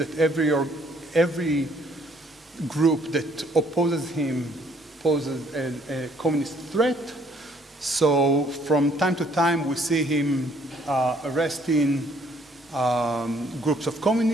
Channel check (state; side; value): normal; both; correlation 0.63